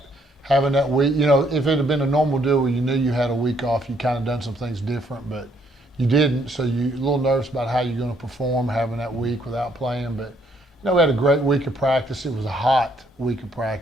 having that week. If it had been a normal deal where you knew you had a week off, you kind of done some things different, but you didn't, so you're a little nervous about how you're going to perform having that week without playing. But, we had a great week of practice. It was a hot week of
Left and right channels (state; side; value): normal; both; correlation 0.69